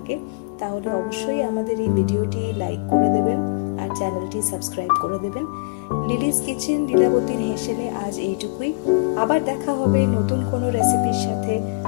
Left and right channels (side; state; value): right; quieter; 31.7 dB